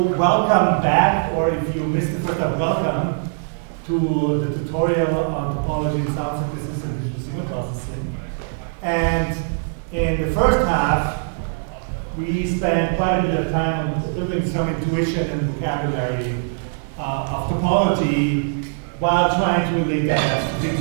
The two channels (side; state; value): left; silent; digital silence